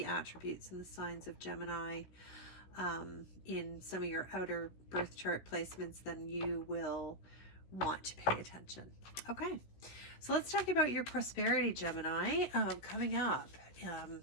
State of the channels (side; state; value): right; late; 16 ms